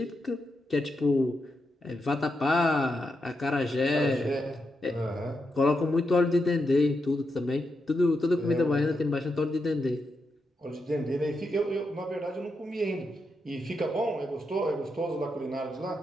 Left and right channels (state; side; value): normal; both; correlation 0.85